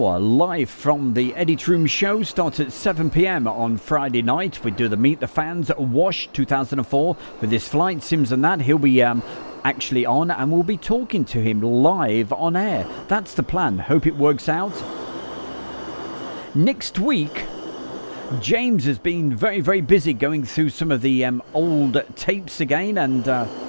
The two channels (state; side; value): inverted; both; correlation -1.00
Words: live from the Edit Room show. Starts at 7 p.m. on Friday night. We do the Meet the Fans Wash 2004 with his flight sims and that. He'll be actually on, and we'll be talking to him live on air. That's the plan. Hope it works out. Next week, James has been very, very busy going through some of the old tapes again,